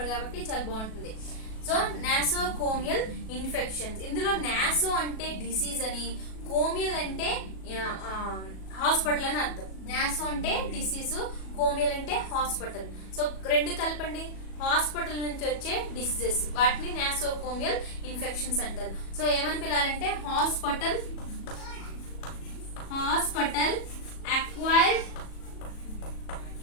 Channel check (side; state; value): right; late; 37 ms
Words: కాబట్టి చాలా బాగుంటుంది. సో నాసోకోమియల్ ఇన్ఫెక్షన్స్, ఇందులో నాసో అంటే డిసీజ్ అని, కోమియల్ అంటే హాస్పిటల్ అని అర్థం. నాసో అంటే డిసీజ్, కోమియల్ అంటే హాస్పిటల్. సో రెండు కలపండి, హాస్పిటల్ నుంచి వచ్చే డిసీజెస్, వాటిని నాసోకోమియల్ ఇన్ఫెక్షన్స్ అంటారు. సో ఏమని పిలాలంటే hospital acquired